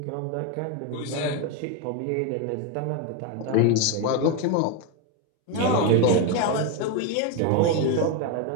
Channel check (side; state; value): both; different; correlation 0.02